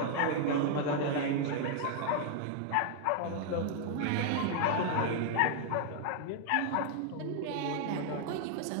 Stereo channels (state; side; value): different; both; correlation 0.00